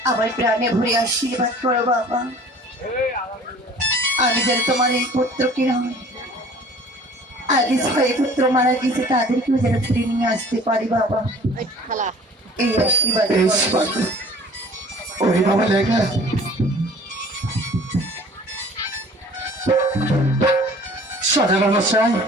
আমার প্রাণে ভরে আশীর্বাদ করো বাবা। আমি যেন তোমার এই পুত্রকে নয়, আগে ছয় পুত্র মারা গেছে তাদেরকেও যেন ফিরে নিয়ে আসতে পারি বাবা, এই আশীর্বাদ করো। ওরে বাবা লেখা সদাগর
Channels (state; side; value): normal; both; correlation 0.48